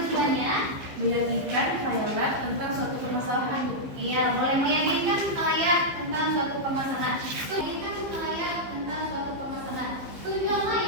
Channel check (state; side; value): late; left; 15 ms